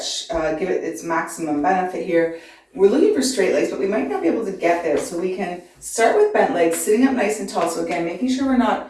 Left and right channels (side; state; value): both; identical; correlation 1.00